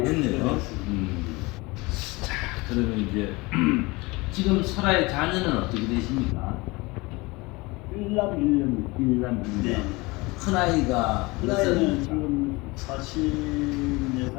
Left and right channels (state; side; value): quieter; right; 23.8 dB